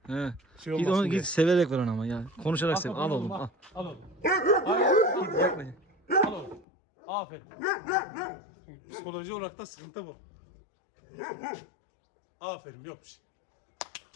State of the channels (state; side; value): drops out; right; at 6.7 s